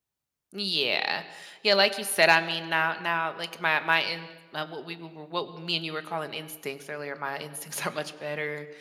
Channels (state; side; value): identical; both; correlation 1.00